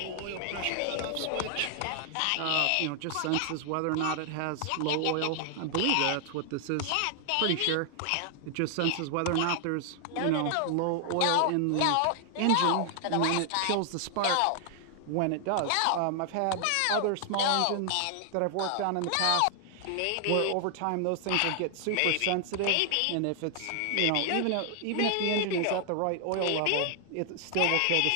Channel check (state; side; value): different; both; correlation 0.00